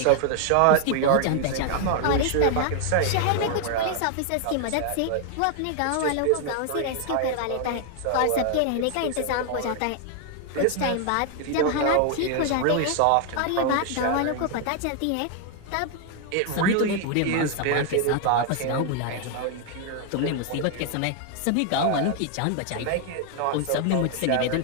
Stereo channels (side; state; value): both; different; correlation 0.00